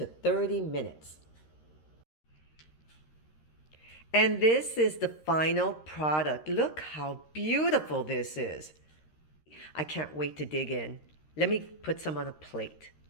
30 minutes. And this is the final product. Look how beautiful this is. I can't wait to dig in. Let me put some on a plate.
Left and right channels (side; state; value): right; late; 13 ms